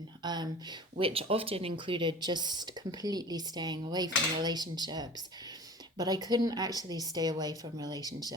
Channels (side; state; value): both; normal; correlation 0.40